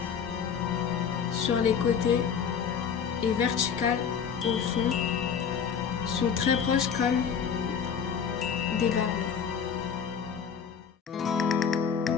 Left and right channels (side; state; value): right; quieter; 7.0 dB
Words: sur les côtés et verticales au fond sont très proches comme des barreaux.